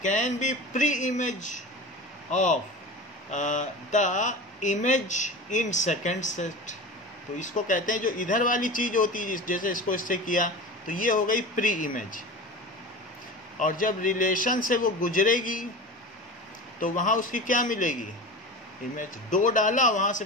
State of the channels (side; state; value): both; normal; correlation 0.31